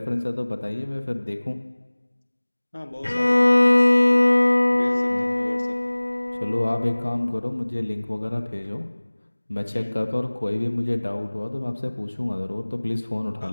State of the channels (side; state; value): both; inverted; correlation -1.00